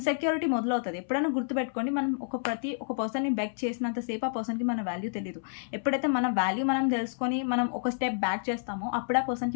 మొదలవుతుంది. ఎప్పుడైనా గుర్తుపెట్టుకోండి, మనం ఒక పర్సన్ని బెక్ చేసినంతసేపు ఆ పర్సన్కి మన వాల్యూ తెలియదు. ఎప్పుడైతే మన వాల్యూ మనం తెలుసుకొని మనం ఒక స్టెప్ బ్యాక్ చేస్తామో అప్పుడు ఆ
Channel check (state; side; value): silent; right; 58 dB below the other